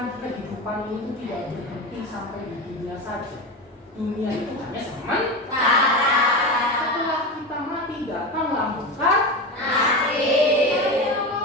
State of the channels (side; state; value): both; normal; correlation 0.21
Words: kehidupan ini tidak berhenti sampai di dunia saja. Dunia itu hanya sementara. Setelah kita mati datang lambungkan mati.